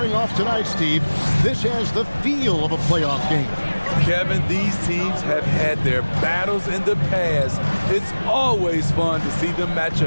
off tonight, Steve. This has the feel of a playoff game. Kevin, these teams have had their battles in the past. It's always fun to see them match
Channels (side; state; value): both; inverted; correlation -1.00